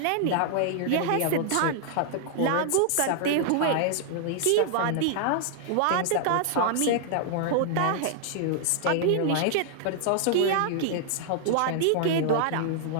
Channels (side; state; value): both; different; correlation -0.01